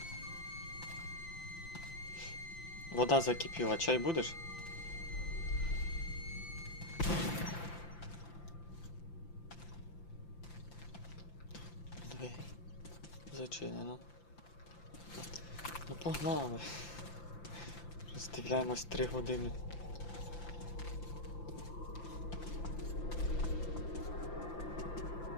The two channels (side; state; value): right; late; 5.8 ms